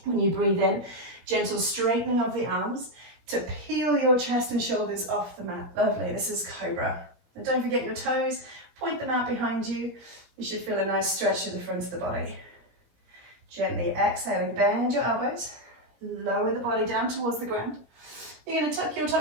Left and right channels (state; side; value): late; left; 17 ms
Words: When you breathe in, gentle straightening of the arms to peel your chest and shoulders off the mat. Lovely, this is Cobra. And don't forget your toes, point them out behind you. You should feel a nice stretch to the front of the body. Gently exhaling, bend your elbows, lower the body down towards the ground. You're going to tuck your